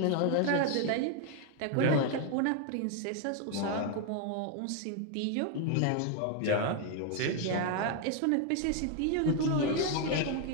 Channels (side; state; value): both; different; correlation 0.01